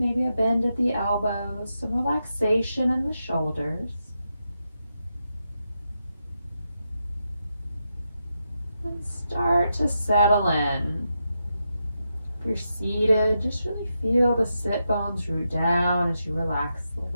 a bend at the elbows, some relaxation in the shoulders. And start to settle in. If you're seated, just really feel the sit bones root down as you relax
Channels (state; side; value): inverted; both; correlation -0.86